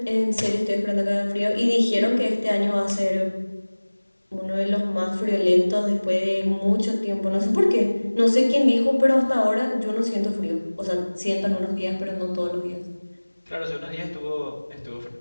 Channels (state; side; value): inverted; both; correlation -1.00